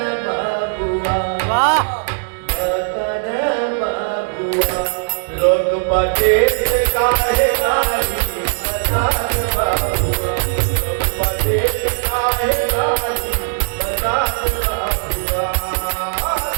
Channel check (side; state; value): left; silent; 63 dB below the other